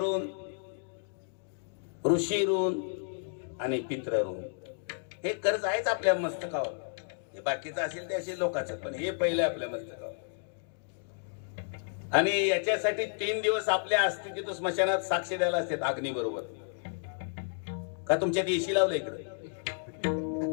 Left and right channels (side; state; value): right; silent; digital silence